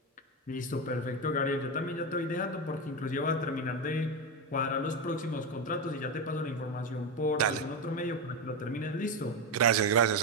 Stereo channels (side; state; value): both; normal; correlation 0.12